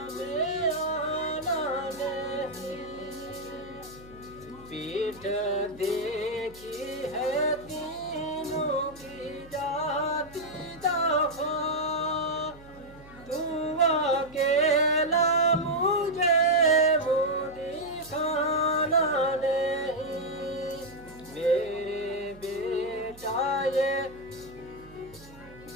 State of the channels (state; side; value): noise; right; hum, 21 dB below the sound